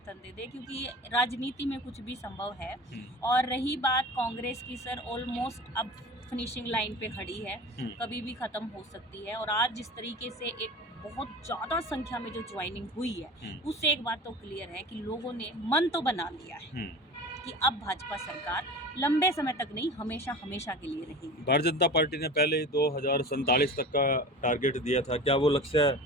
दे दे, क्योंकि राजनीति में कुछ भी संभव है। और रही बात कांग्रेस की, सर, ऑलमोस्ट अब फिनिशिंग लाइन पे खड़ी है, कभी भी खत्म हो सकती है। और आज जिस तरीके से एक बहुत ज़्यादा संख्या में जो ज्वाइनिंग हुई है, उससे एक बात तो क्लियर है कि लोगों ने मन तो बना लिया है कि अब भाजपा सरकार लंबे समय तक नहीं, हमेशा हमेशा के लिए रहेगी। भारतीय जनता पार्टी ने पहले 2047 तक का टारगेट दिया था, क्या वो लक्ष्य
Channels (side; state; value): both; normal; correlation 0.35